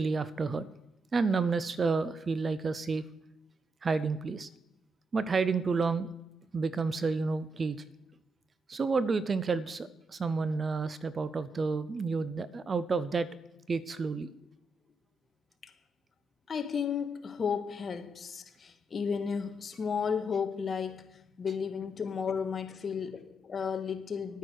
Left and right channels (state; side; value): normal; both; correlation 0.81